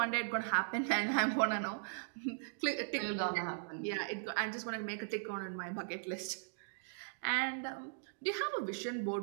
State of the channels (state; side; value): silent; left; digital silence